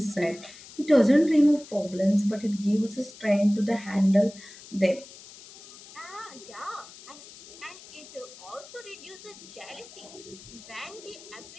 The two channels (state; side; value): noise; left; hiss, 18 dB below the sound